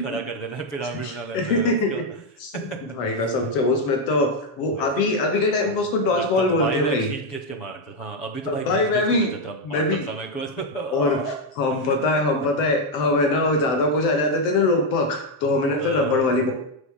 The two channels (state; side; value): late; right; 7.0 ms